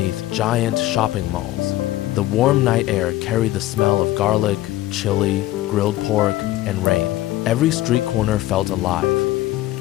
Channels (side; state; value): right; quieter; 15.8 dB